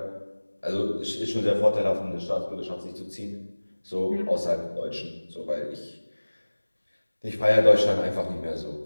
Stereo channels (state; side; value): inverted; both; correlation -1.00